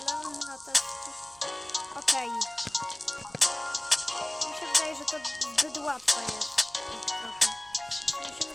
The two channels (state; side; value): noise; right; hum, 28 dB below the sound